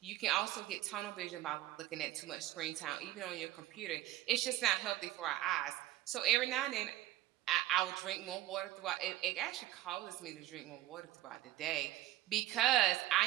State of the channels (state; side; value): quieter; left; 14.3 dB